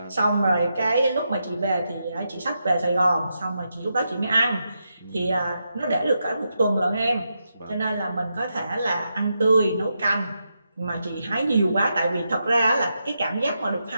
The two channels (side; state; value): both; inverted; correlation -0.85